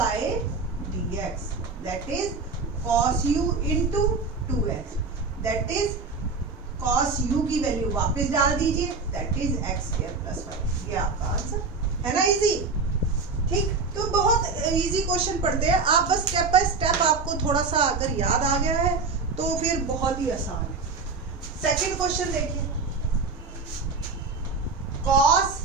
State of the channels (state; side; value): quieter; left; 4.3 dB